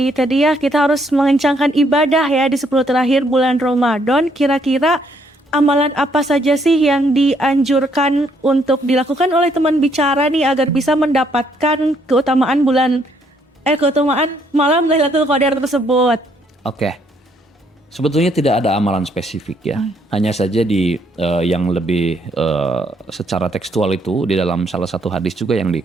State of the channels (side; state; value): both; normal; correlation 0.69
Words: tadi ya kita harus mengencangkan ibadah ya di 10 terakhir bulan Ramadan. Kira-kira amalan apa saja sih yang dianjurkan untuk dilakukan oleh teman bicara nih agar bisa mendapatkan keutamaan keutamaan malam Lailatul Qadar tersebut? Oke. Sebetulnya tidak ada amalan spesifik ya. Hanya saja di yang lebih secara tekstual itu di dalam salah satu hadis juga yang